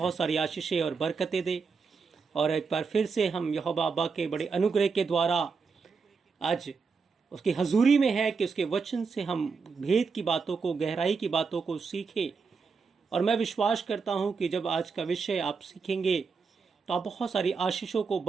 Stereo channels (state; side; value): quieter; left; 5.1 dB